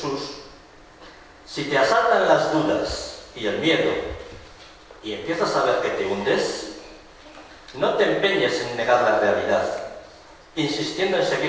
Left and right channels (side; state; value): both; identical; correlation 1.00